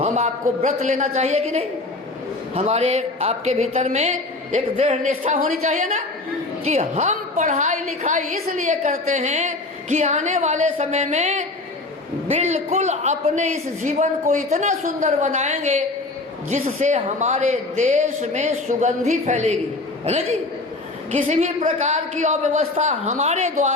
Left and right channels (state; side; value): quieter; right; 3.1 dB